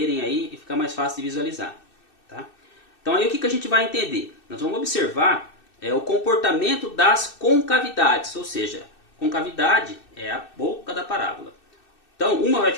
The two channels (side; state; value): right; late; 2.6 ms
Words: aí e ficar mais fácil de visualizar. Tá? Então, aí o que a gente vai entender? Nós vamos observar o comportamento das concavidades, ou seja, concavidade é a boca da parábola. Então, uma vai